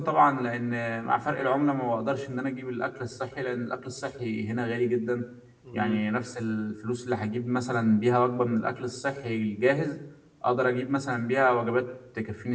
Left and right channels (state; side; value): identical; both; correlation 1.00